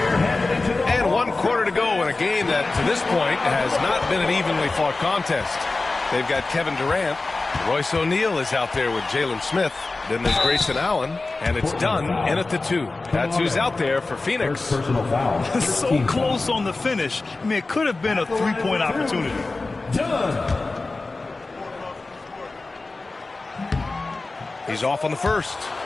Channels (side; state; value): right; quieter; 3.4 dB